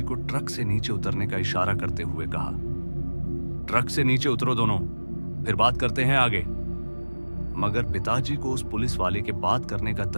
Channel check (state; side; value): inverted; both; correlation -1.00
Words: को ट्रक से नीचे उतरने का इशारा करते हुए कहा, ट्रक से नीचे उतरो दोनों, फिर बात करते हैं आगे। मगर पिताजी को उस पुलिस वाले के बात करने का